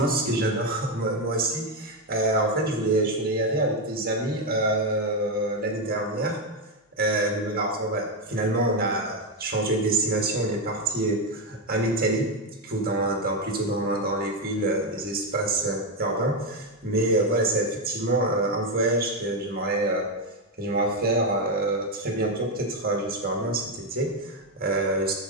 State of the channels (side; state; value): both; normal; correlation 0.08